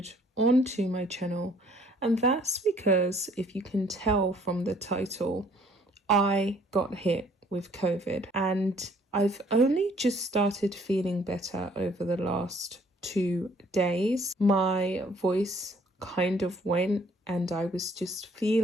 onto my channel, and that's because, if you can tell from the title, I got hit with COVID and I've only just started feeling better over the last 2 days. My voice kind of went and I was just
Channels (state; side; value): normal; both; correlation 0.60